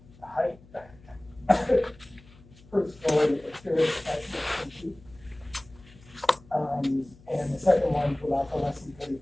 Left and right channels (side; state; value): left; noise; hum, 24 dB below the sound